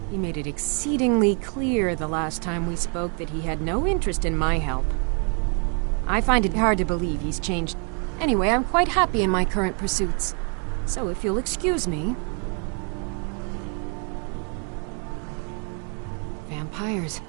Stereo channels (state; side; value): quieter; left; 37.0 dB